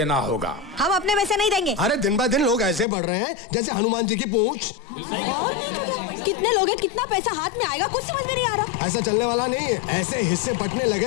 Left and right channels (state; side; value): drops out; right; at 2.9 s